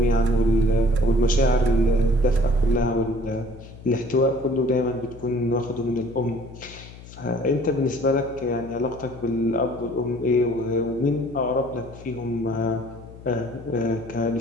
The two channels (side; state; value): left; noise; hum, 17 dB below the sound